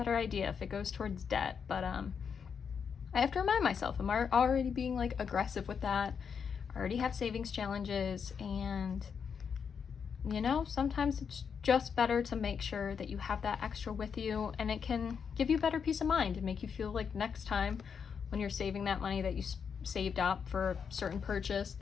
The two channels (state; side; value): quieter; right; 6.7 dB